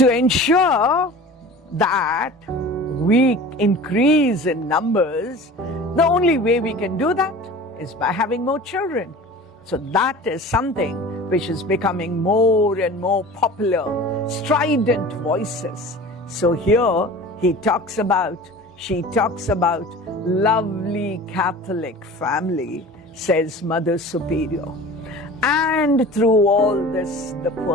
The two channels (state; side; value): normal; both; correlation 0.39